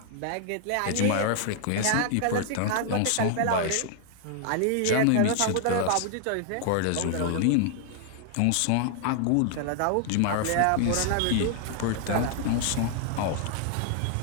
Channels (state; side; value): different; both; correlation 0.00